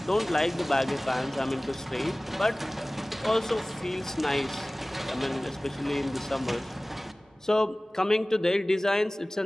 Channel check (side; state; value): both; normal; correlation 0.98